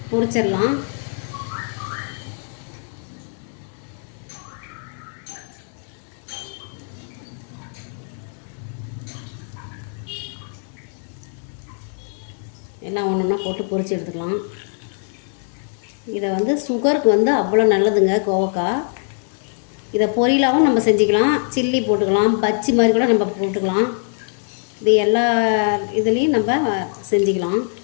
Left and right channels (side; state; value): right; silent; 57 dB below the other